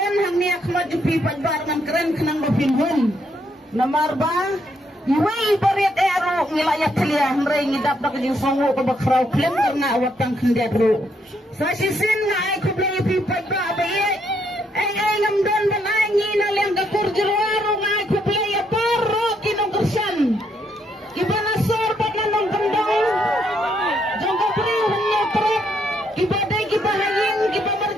hang ni akma jupi pagbar rungan keren kenang bapinhun namar ba iwe ibarit ero ngilayak telia mrei ngidap dak jing songo ko bakrau klem karena awatang kendiat ru sa sisin nga ay kublay pi pagba baye ay ngamdon balay ngina leng gakur jirwaro nga ay kublay Ibana sor paglanong kendang jangka beri hanya truk ibadai kibahayin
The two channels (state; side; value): normal; both; correlation 0.74